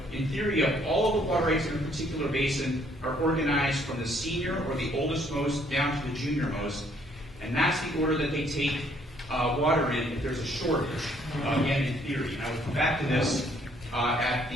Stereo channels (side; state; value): both; normal; correlation 0.65